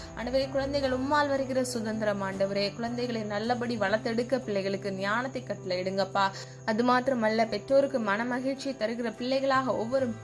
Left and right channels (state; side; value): identical; both; correlation 1.00